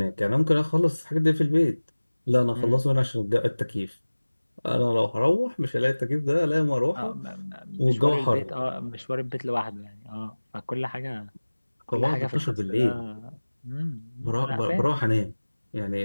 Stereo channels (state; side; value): inverted; both; correlation -1.00